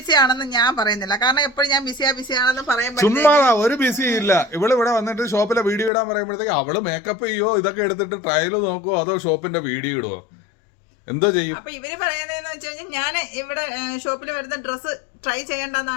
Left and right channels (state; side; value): drops out; right; at 5.9 s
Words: ആണെന്ന് ഞാൻ പറയുന്നില്ല, കാരണം എപ്പോഴും ഞാൻ ബിസിയാണെന്ന് പറയുമ്പോൾ ചുമ്മാ ഒരു ബിസി ഇല്ല. ഇവിടെ വന്നിട്ട് ഷോപ്പിലെ വീഡിയോ ഇടാൻ പറയുമ്പോഴത്തേക്ക് അവള് മേക്കപ്പ് ചെയ്യോ, ഇതൊക്കെ എടുത്തിട്ട് ട്രയൽ നോക്കുവോ, അതോ ഷോപ്പിന്റെ വീഡിയോ ഇടുവോ, എന്തോ ചെയ്യും? അപ്പൊ ഇവര് പറയുന്നതെന്ന് വെച്ച് കഴിഞ്ഞാൽ ഞാൻ ഇവിടെ ഷോപ്പിൽ വരുന്ന ഡ്രസ്സ് ട്രൈ